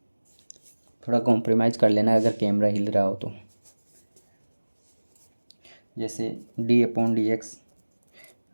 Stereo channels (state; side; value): inverted; both; correlation -1.00